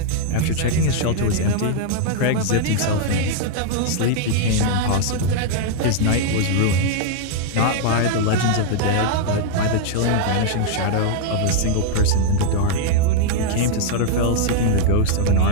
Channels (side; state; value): both; different; correlation -0.01